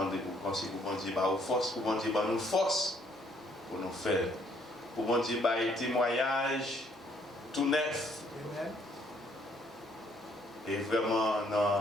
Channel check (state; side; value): normal; both; correlation 0.66